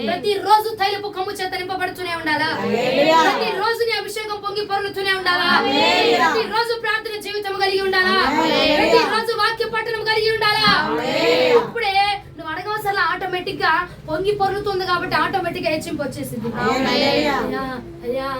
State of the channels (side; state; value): both; identical; correlation 1.00